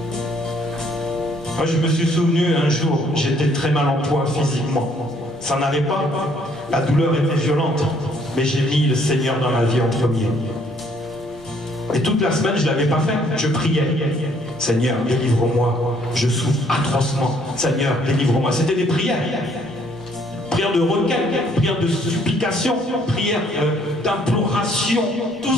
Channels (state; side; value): normal; both; correlation 0.64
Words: Moi, je me suis souvenu un jour, j'étais très mal en point physiquement. Ça n'allait pas. La douleur était violente. Mais j'ai mis le Seigneur dans ma vie en premier. Et toute la semaine, je ne l'avais pas fait. Je priais. Seigneur, délivre-moi. Je souffre atrocement. Seigneur, délivre-moi. C'était des prières. Prières de requête, prières de supplication, prières d'imploration. Tout